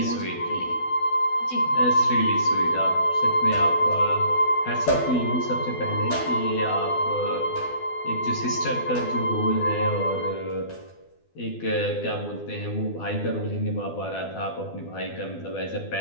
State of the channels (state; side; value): late; right; 12 ms